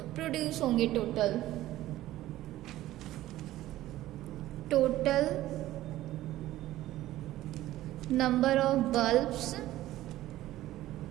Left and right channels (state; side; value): quieter; left; 15.0 dB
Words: प्रोड्यूस होंगे? Total number of bulbs